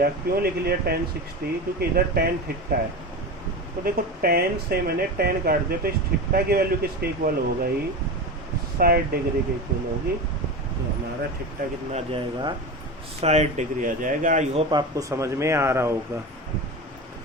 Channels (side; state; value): both; normal; correlation 0.25